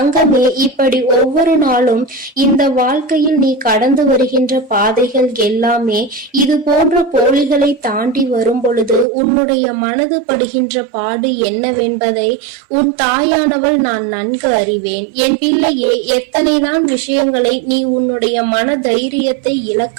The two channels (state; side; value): drops out; left; at 9.1 s